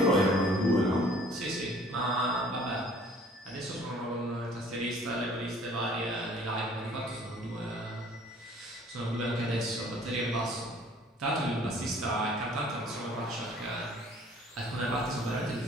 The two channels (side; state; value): both; normal; correlation 0.55